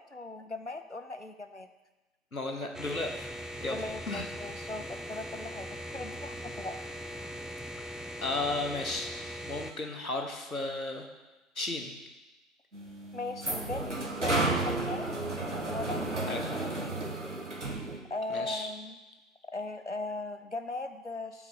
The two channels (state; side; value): normal; both; correlation 0.41